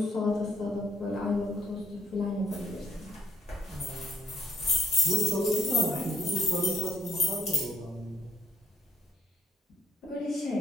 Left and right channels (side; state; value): both; normal; correlation 0.64